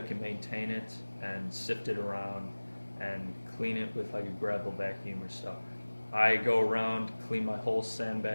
can maintain it and sift it around and clean it with like a gravel vacuum or stuff. I go around, clean my whole sand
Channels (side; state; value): both; inverted; correlation -1.00